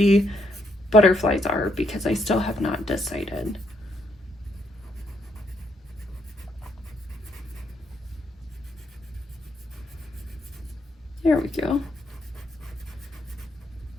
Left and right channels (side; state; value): both; normal; correlation 0.75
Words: butterflies are, because I still have not decided. There we go.